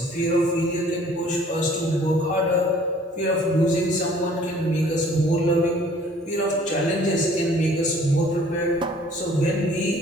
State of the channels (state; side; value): normal; both; correlation 0.54